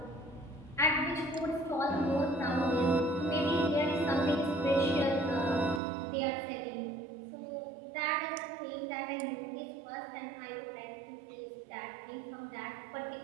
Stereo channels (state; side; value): drops out; left; at 5.8 s